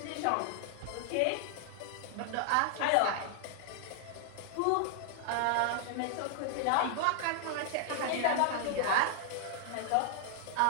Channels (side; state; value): both; different; correlation -0.01